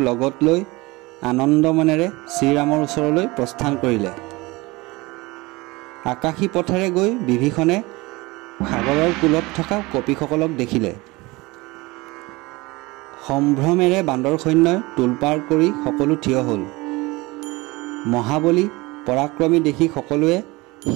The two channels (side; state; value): left; quieter; 22.7 dB